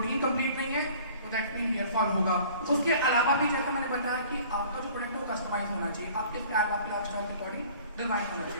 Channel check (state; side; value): inverted; both; correlation -0.50